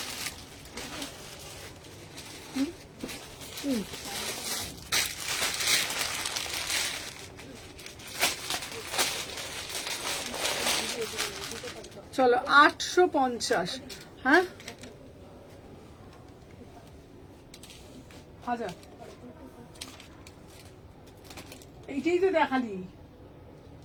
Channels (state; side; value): identical; both; correlation 1.00